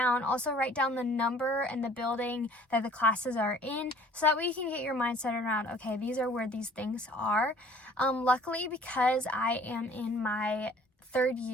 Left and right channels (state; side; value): normal; both; correlation 0.53